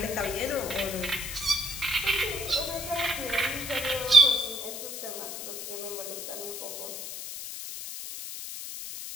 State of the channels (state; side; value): noise; left; hiss, 7 dB below the sound